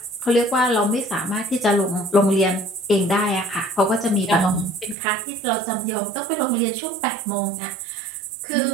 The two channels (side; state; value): left; drops out; at 5.0 s